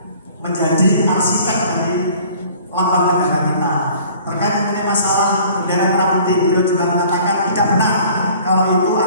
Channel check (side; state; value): both; inverted; correlation -0.51